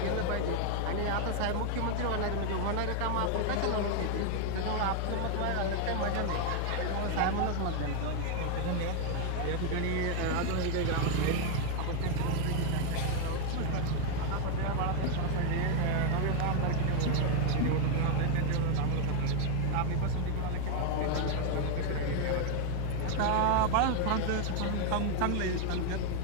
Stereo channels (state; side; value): different; both; correlation 0.00